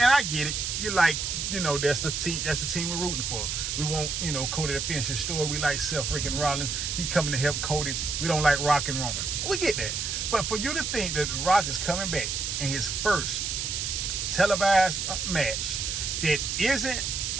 I get it. You're like, that's the team we're rooting for. We want, Cody to finish his story. We like Seth freaking Rollins. He coming to help Cody. We don't like Rock and Roman. We get that. But for you to think that Rock is coming back in his first televised match that isn't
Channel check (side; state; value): right; noise; hiss, 2 dB below the sound